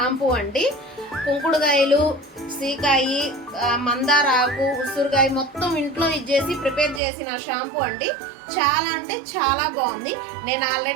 అండి. కుంకుడుకాయలు, సీకాయి, మందార ఆకు, ఉసురుకాయ మొత్తం ఇంట్లో ఇచ్చేసి ప్రిపేర్ చేసిన షాంపూ అండి. చాలా అంటే చాలా బాగుంది. నేను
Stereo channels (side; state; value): left; drops out; at 7.0 s